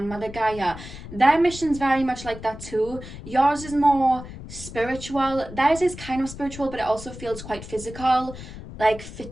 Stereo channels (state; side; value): noise; left; rumble, 13 dB below the sound